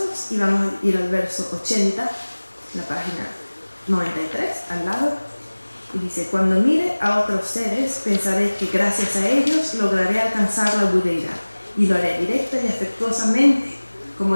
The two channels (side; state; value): both; inverted; correlation -1.00